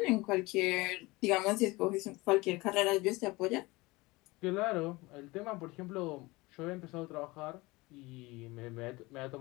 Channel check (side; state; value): right; quieter; 22.3 dB